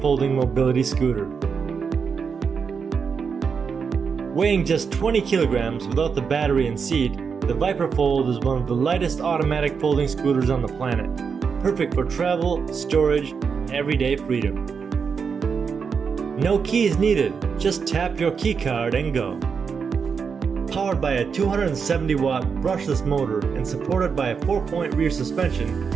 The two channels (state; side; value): quieter; left; 5.9 dB